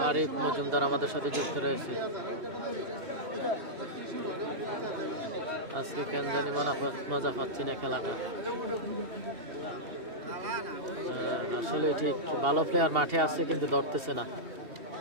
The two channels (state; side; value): late; left; 2.8 ms